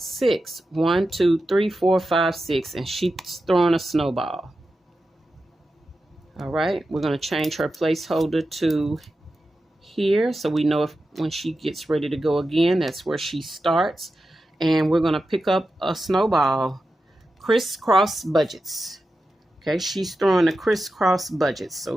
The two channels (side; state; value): both; normal; correlation 0.91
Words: 6. 1, 2, 3, 4, 5, 6. And she's throwing a snowball. All right, we're going to change her placeholder to here, so we know if when she gets ready to go again, that's where she starts. And we're going to pick up a Snowball, crisscross budgets. Okay, she's throwing the crisscross budgets. So